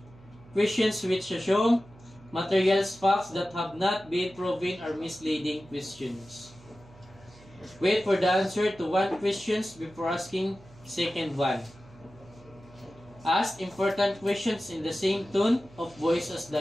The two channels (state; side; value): noise; right; hum, 23 dB below the sound